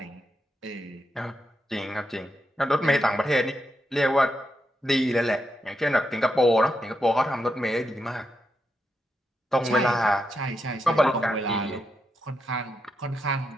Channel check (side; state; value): both; normal; correlation 0.84